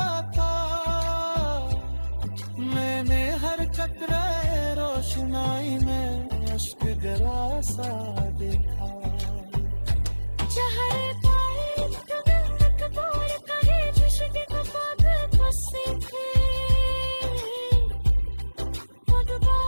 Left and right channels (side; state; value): both; inverted; correlation -1.00